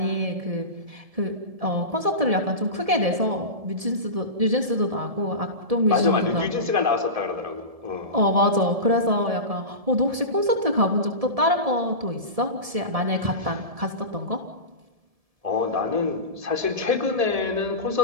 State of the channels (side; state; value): left; late; 1.7 ms